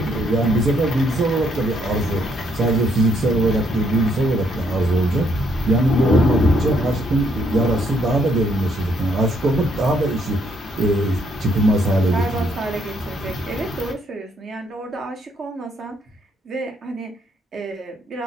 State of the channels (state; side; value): normal; both; correlation 0.71